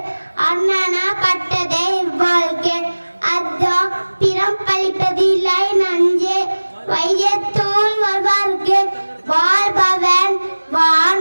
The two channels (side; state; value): both; inverted; correlation -1.00